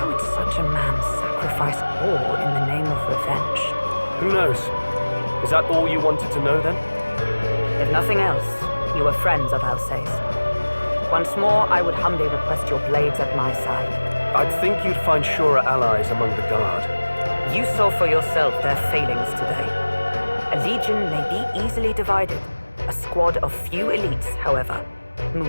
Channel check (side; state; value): both; inverted; correlation -1.00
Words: would such a man sacrifice all in the name of revenge? Who knows? Is that all you wanted to know then? If nothing else, you were friends of Alsace. Once more, I would humbly request your blades at my side. I'd think you'd find surer allies among the guard. You saw for yourself their failings today. A legion may be easily divided. A squad of few elites, however,